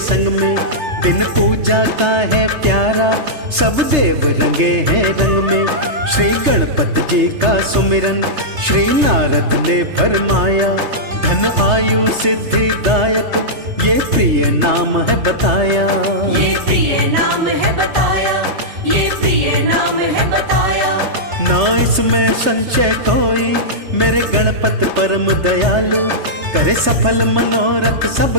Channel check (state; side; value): late; left; 3.3 ms